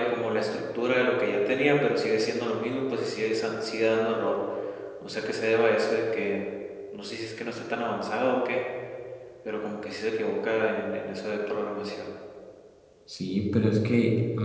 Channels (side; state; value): both; identical; correlation 1.00